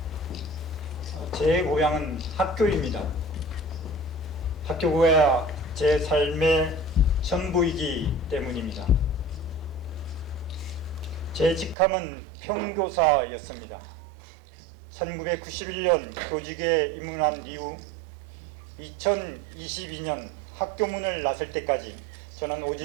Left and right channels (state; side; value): drops out; left; at 11.8 s